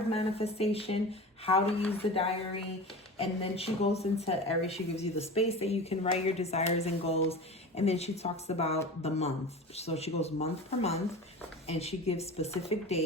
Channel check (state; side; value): normal; both; correlation 0.33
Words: manifestation, how to use the diary. And then she goes into Aries. She gives you the space that you can write your desires and goals. And then she talks about the month. So she goes month per month and she gives specific